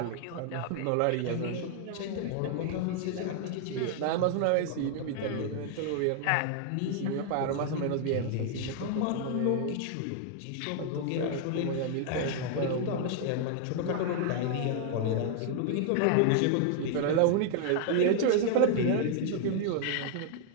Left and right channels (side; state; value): both; different; correlation 0.00